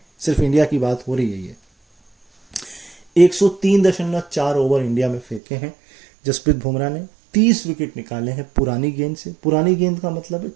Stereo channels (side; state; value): left; drops out; at 5.4 s